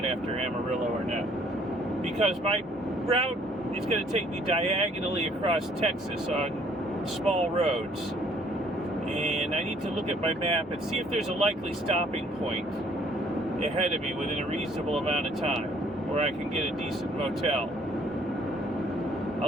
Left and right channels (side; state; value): both; normal; correlation 0.61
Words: after Amarillo or not, because my route is going to take me diagonally across Texas on small roads, and I need to look at my map and see if there's a likely stopping point ahead of me within a reasonable amount of time where I can get a decent motel. A